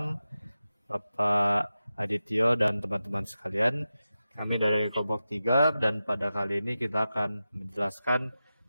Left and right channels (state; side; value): inverted; both; correlation -0.93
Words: Bapak Adityo dan teman-teman sekalian. Kami dari kelompok 3 dan pada kali ini kita akan menjelaskan